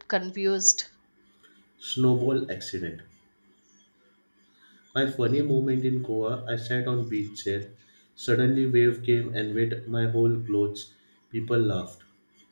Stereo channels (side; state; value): both; inverted; correlation -1.00